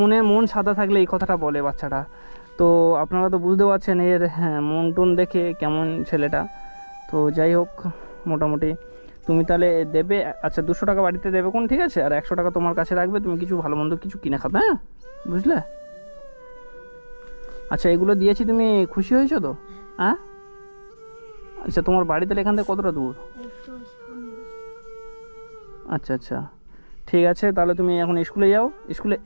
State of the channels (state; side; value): inverted; both; correlation -1.00